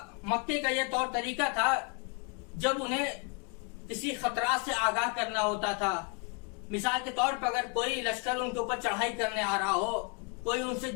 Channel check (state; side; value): quieter; right; 34.5 dB